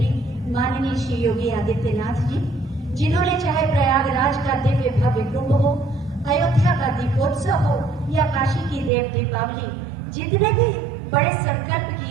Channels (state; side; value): drops out; left; at 8.9 s